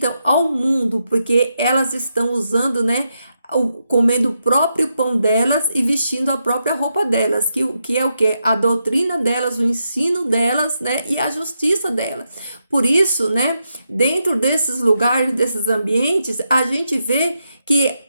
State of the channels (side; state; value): both; inverted; correlation -0.84